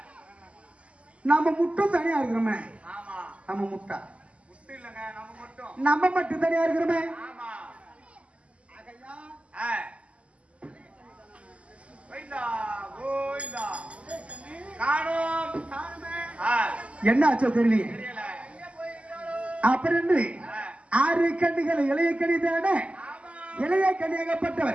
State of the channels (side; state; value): left; late; 0.061 ms